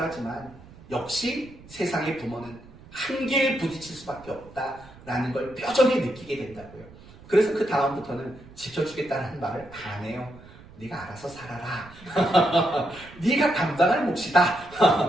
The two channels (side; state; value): right; noise; rumble, 21 dB below the sound